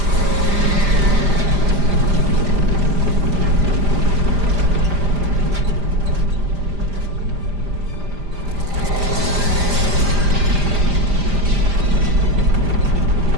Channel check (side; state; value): left; late; 5.0 ms